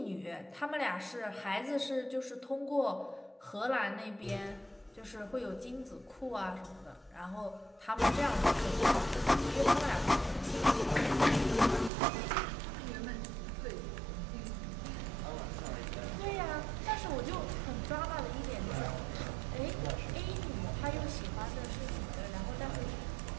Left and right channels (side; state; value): left; drops out; at 11.9 s